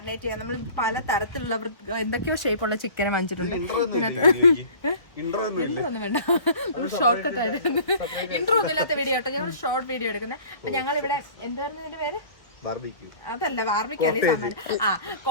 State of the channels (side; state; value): right; late; 1.6 ms